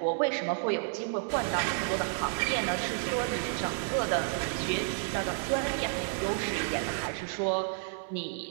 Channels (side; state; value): left; silent; 57 dB below the other